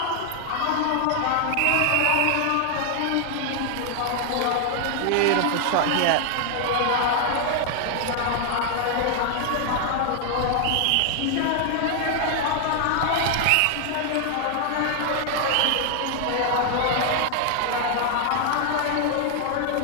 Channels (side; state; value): both; different; correlation 0.00